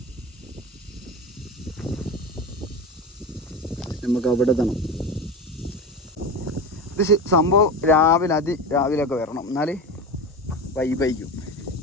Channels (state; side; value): normal; both; correlation 0.25